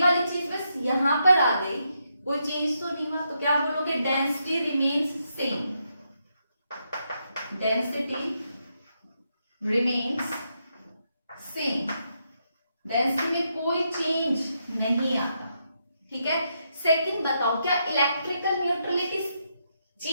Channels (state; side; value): inverted; both; correlation -0.81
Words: वाली चीज बस यहाँ पर आ गई, कोई चेंज तो नहीं हुआ। तो क्या बोलोगे, density remains same, density remains same, density में कोई चेंज नहीं आता, ठीक है। सेकंड बताओ, क्या इलेक्ट्रिकल न्यूट्रलिटी